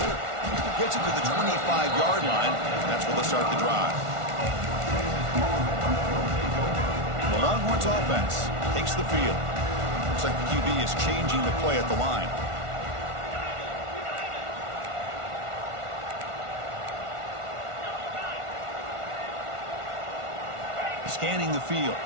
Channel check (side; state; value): left; late; 1.4 ms